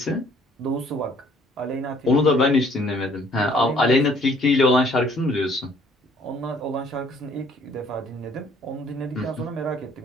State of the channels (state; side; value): normal; both; correlation 0.60